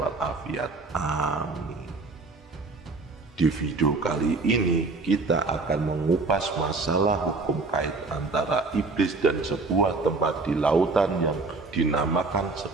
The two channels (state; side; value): quieter; left; 3.7 dB